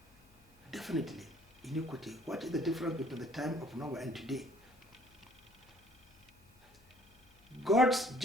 Definitely, iniquity. What is the difference between the time of Noah and today? God's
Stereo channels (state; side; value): noise; left; hum, 29 dB below the sound